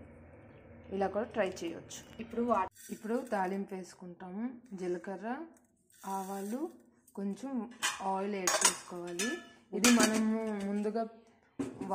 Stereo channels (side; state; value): both; identical; correlation 1.00